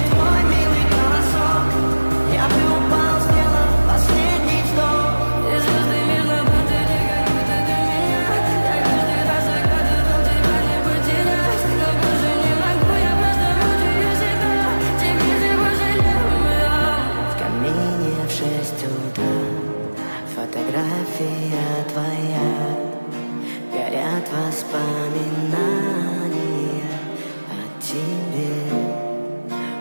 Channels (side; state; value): both; inverted; correlation -1.00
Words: твой милый голосок, я бы упал, сделал последний вздох. И звезды мирно падали, как будто до меня. Я каждый раз загадывал тебя не потерять, но больше не могу, я просто мучаю себя. Теперь ты пожалел меня. В камине в 6 утра фотография твоя, горят воспоминания о тебе.